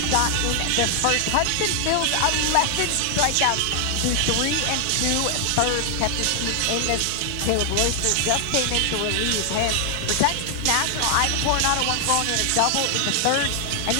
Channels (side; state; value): both; different; correlation 0.00